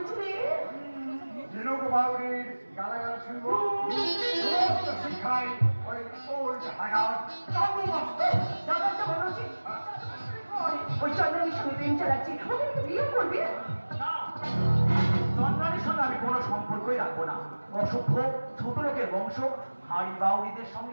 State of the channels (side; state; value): both; inverted; correlation -1.00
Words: ঝিনুক বাউরির গালাগাল শুনবো, সমস্ত শিক্ষায় ওই ওল্ড হাগার দাদাটা বলো যে ওই চন্দ্রনীর সঙ্গে প্রেম চালাচ্ছি, ওকে একটু বিয়ে করবে? চন্দ্রানীর সঙ্গে আমি কোনো সম্পর্কই রাখবো না। অসভ্য ছোট লোকের বংশ, হাড়ি বাউরিদের